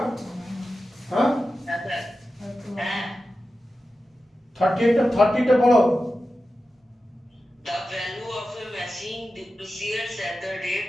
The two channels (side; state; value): both; normal; correlation 0.93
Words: হ্যাঁ, হ্যাঁ স্যার। হ্যাঁ। 30টা পড়ো। The value of a machine depreciates at the